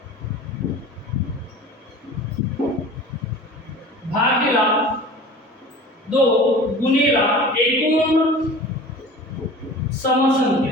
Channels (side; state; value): both; normal; correlation 0.39